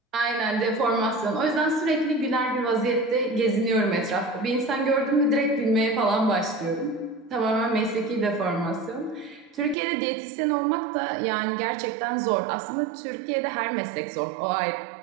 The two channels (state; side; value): drops out; left; at 9.8 s